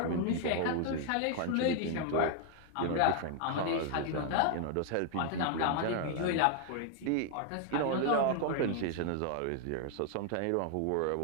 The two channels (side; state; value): both; different; correlation 0.00